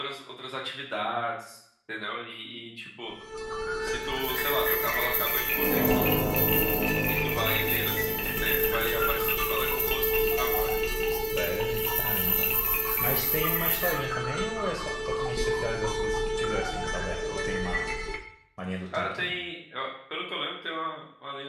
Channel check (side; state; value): both; identical; correlation 1.00